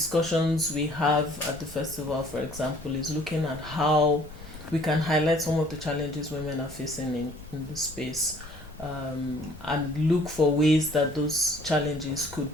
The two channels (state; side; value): normal; both; correlation 0.57